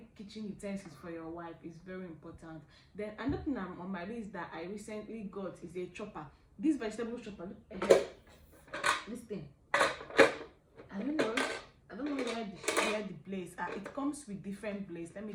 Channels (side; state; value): both; identical; correlation 1.00